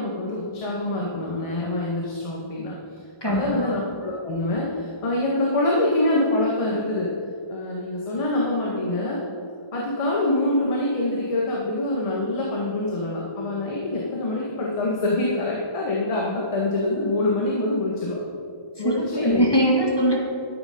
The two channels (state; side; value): late; right; 1.2 ms